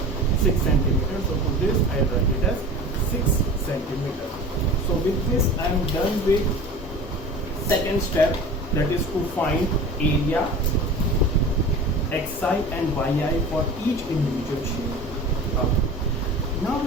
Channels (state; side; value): normal; both; correlation 0.37